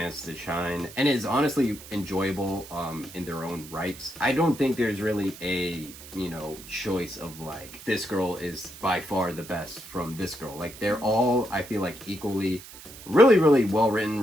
to shine and is honestly enjoyable in their own rights. I don't think there's really a, you know, choice of like, this girl is by far the best from this girl. Like, they're all, I feel like, equally really well written,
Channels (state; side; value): noise; right; hiss, 16 dB below the sound